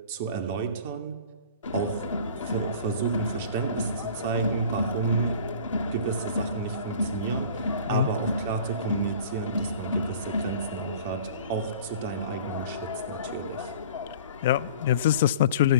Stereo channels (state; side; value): inverted; both; correlation -0.44